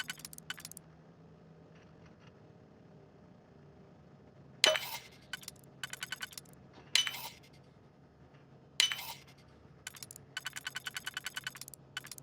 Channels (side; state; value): both; identical; correlation 1.00